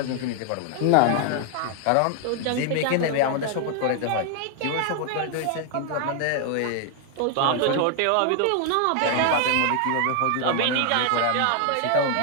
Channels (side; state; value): both; different; correlation 0.00